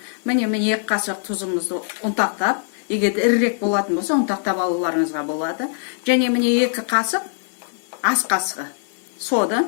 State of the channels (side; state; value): right; silent; digital silence